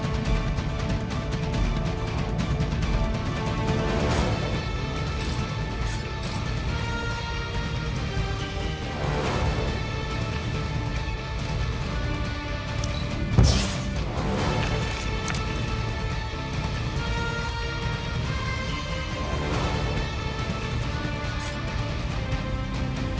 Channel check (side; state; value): both; identical; correlation 1.00